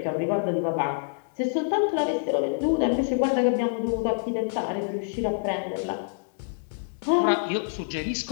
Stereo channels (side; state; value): right; silent; digital silence